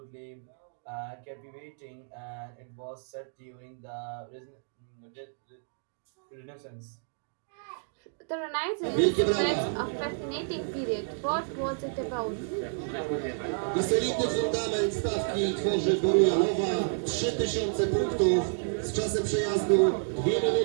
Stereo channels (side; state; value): left; silent; digital silence